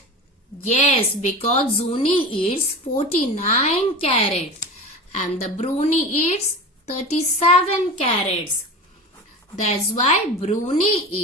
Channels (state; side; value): normal; both; correlation 0.31